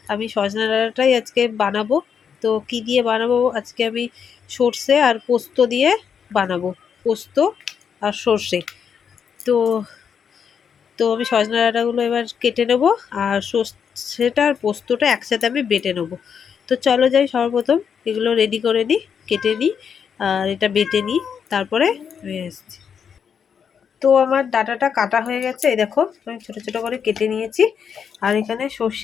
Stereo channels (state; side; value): quieter; right; 7.2 dB